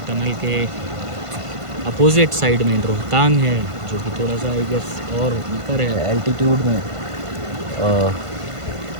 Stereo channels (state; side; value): late; left; 1.5 ms